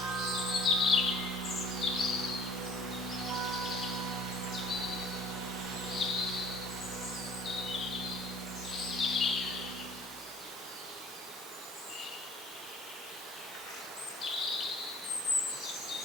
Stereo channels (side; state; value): both; normal; correlation 0.51